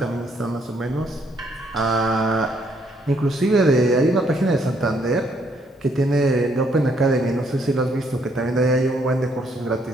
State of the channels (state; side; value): normal; both; correlation 0.70